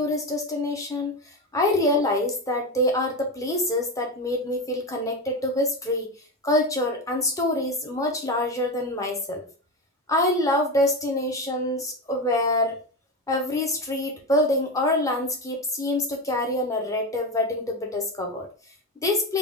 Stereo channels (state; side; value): normal; both; correlation 0.18